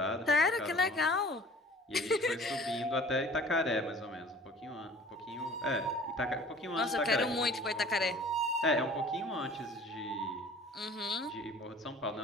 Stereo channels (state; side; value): normal; both; correlation 0.47